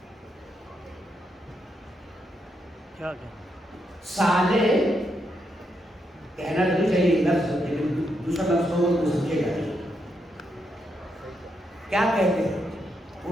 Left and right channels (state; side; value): normal; both; correlation 0.81